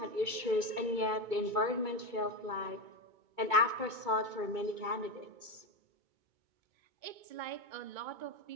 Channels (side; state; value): left; late; 2.2 ms